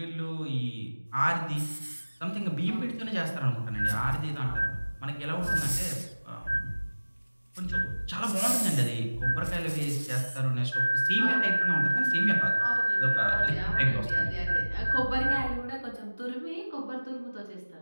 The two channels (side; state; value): both; inverted; correlation -1.00